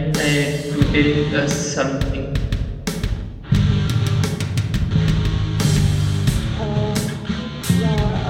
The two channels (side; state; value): both; identical; correlation 1.00